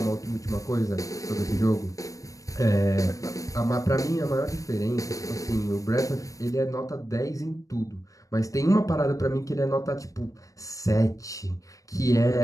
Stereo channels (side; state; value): right; late; 0.16 ms